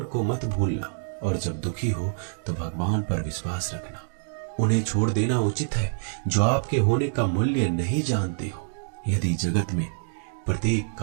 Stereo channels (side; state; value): left; silent; digital silence